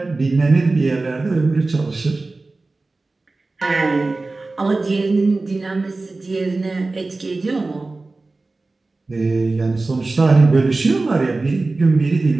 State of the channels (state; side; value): quieter; left; 3.4 dB